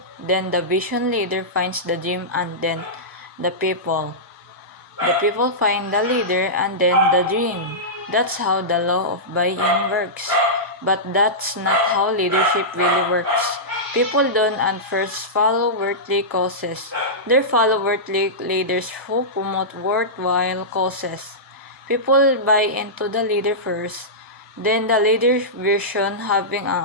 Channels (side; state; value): both; normal; correlation -0.14